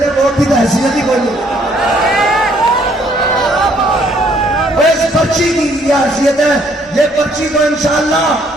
ووٹ کی تو حیثیت ہی کوئی نہیں. اس پرچی کی یہ حیثیت ہے, یہ پرچی کو انشاءاللہ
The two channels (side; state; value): both; normal; correlation 0.65